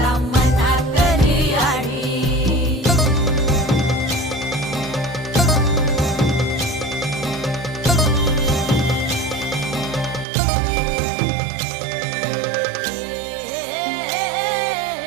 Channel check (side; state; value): left; drops out; at 10.2 s